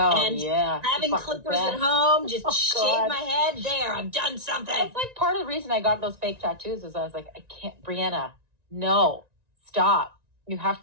and yeah. having clippers at home, just shave my head. There, I've done something. That's like part of the reason I got those fake tattoos is I was like, I can't, Brianna, no, stop. You have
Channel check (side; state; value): left; late; 1.9 ms